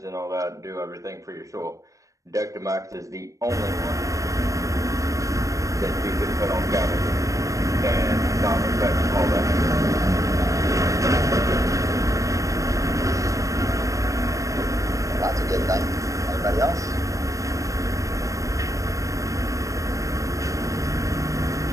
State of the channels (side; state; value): left; late; 0.16 ms